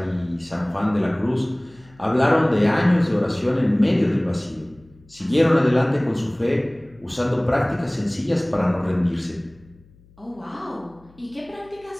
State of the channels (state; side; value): noise; left; hum, 28 dB below the sound